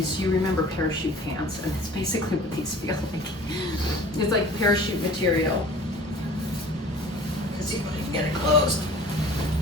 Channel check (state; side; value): normal; both; correlation 0.46